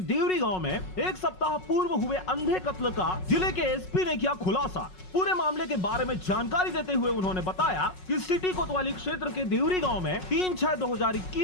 देवरी गांव में एक सप्ताह पूर्व हुए अंधे कत्ल का जिले के एसपी ने किया खुलासा। पूरे मामले के बारे में जानकारी देते हुए उन्होंने बताया कि सिटी कोतवाली क्षेत्र के देवरी गांव में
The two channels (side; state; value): right; late; 5.4 ms